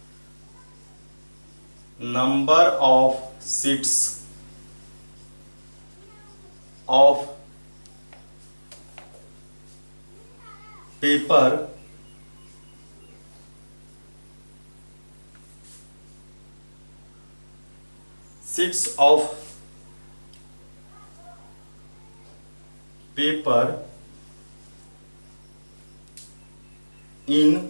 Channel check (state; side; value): inverted; both; correlation -1.00